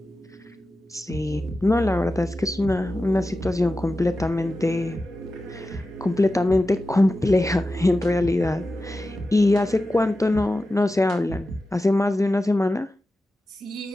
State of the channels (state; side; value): normal; both; correlation 0.93